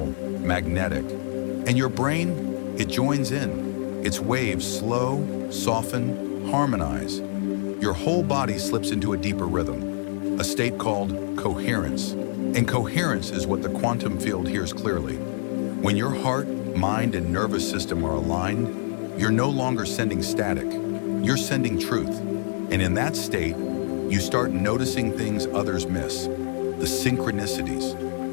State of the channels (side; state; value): right; silent; digital silence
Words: magnetic, and your brain, it joins in. Its waves slow, soften, harmonize. Your whole body slips into a deeper rhythm, a state called coherence. And coherence is what the quantum field hears clearly. When your heart, mind, and nervous system are aligned, you're no longer sending static, you're sending truth. And in that state, you start noticing things others miss. The synchronicities,